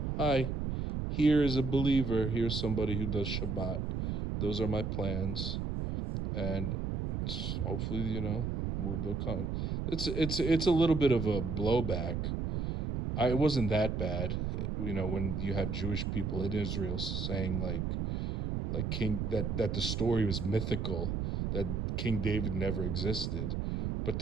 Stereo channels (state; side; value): noise; right; rumble, 1 dB below the sound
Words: hi, here is a believer. Here's somebody who does Shabbat. Those are my plans. And hopefully, they'll come. It's a little bit of a blowback. It wasn't that bad, when you have Jewish people in Israel saying like King that the story was mythical, that King David never existed. But